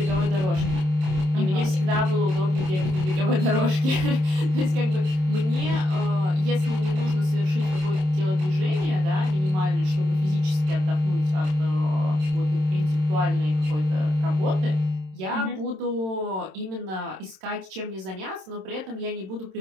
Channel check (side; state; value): left; late; 27 ms